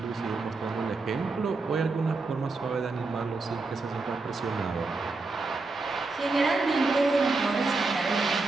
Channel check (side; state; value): left; quieter; 3.7 dB